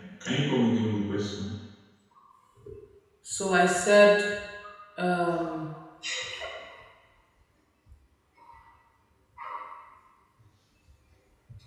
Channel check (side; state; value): both; identical; correlation 1.00